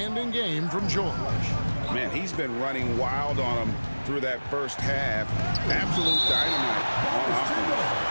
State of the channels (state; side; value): inverted; both; correlation -1.00